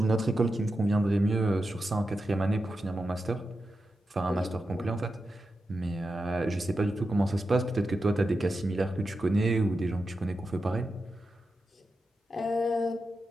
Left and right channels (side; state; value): both; normal; correlation 0.90